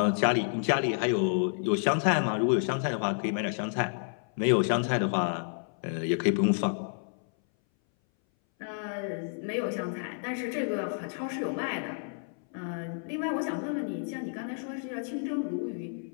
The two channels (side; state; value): right; silent; 58 dB below the other